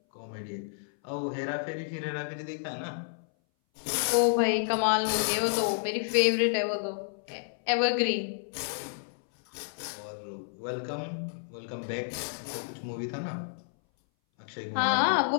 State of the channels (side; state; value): right; silent; 58 dB below the other